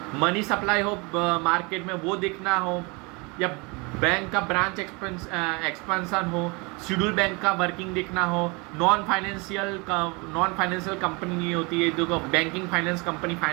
मनी सप्लाई हो मार्केट में वो देखना हो, या बैंक का ब्रांच एक्सपेंशन हो, शेड्यूल बैंक का वर्किंग देखना हो, नॉन फाइनेंशियल कंपनी होती है जो banking finance company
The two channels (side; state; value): left; quieter; 28.5 dB